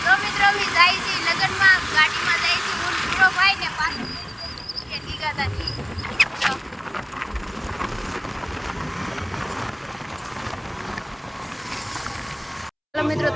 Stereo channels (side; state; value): both; identical; correlation 1.00